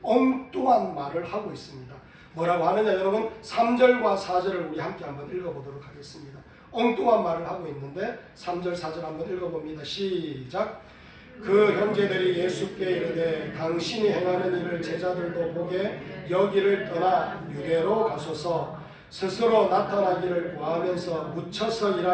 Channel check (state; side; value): identical; both; correlation 1.00